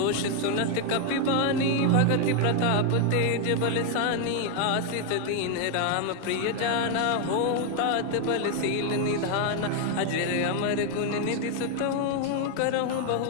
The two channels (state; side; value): different; both; correlation 0.01